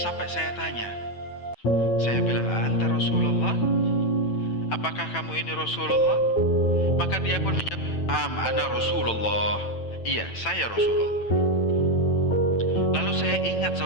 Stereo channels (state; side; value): late; right; 9.1 ms